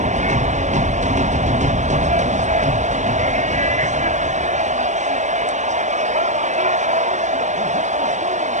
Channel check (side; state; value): left; late; 0.34 ms